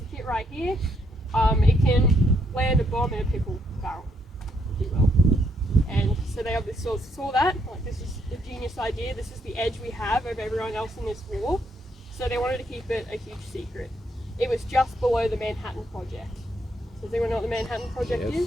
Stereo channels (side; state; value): both; normal; correlation 0.74